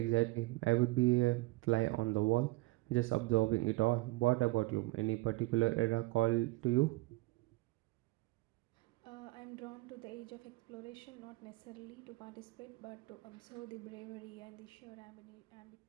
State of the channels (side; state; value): left; quieter; 21.1 dB